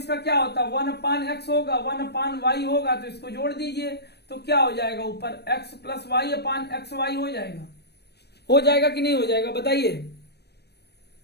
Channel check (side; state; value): right; late; 0.48 ms